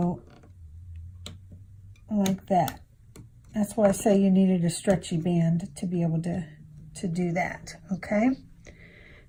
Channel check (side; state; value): both; identical; correlation 1.00